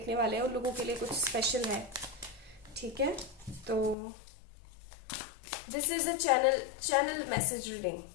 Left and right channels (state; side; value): drops out; right; at 4.0 s